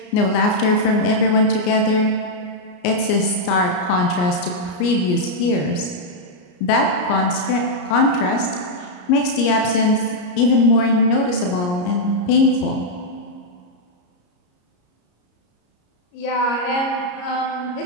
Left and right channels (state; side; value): late; right; 34 ms